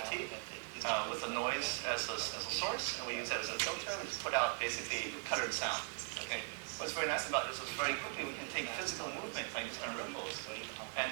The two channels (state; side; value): silent; left; 51 dB below the other